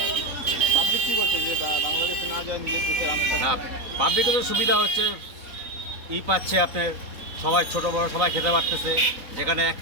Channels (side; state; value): left; late; 3.9 ms